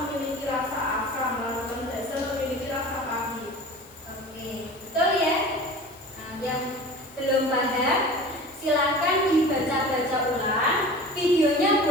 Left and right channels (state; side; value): noise; left; hiss, 24 dB below the sound